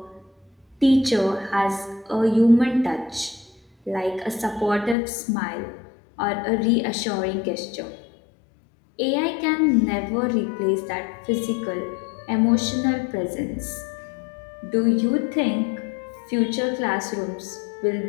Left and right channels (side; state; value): right; drops out; at 5.0 s